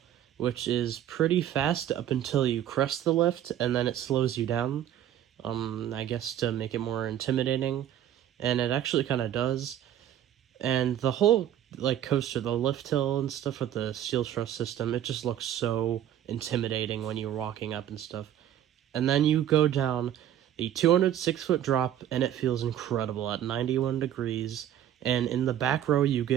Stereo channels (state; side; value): quieter; left; 11.1 dB